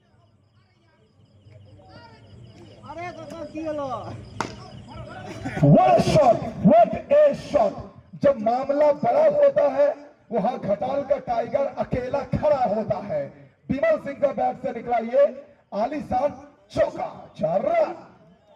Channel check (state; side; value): identical; both; correlation 1.00